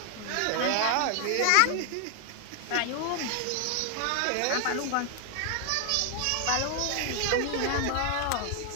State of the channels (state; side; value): different; both; correlation 0.00